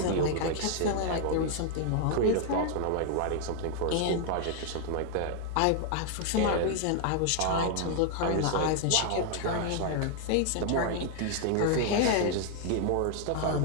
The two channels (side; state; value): both; different; correlation 0.00